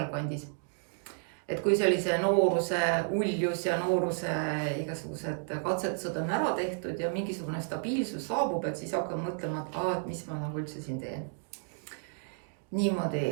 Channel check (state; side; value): silent; left; digital silence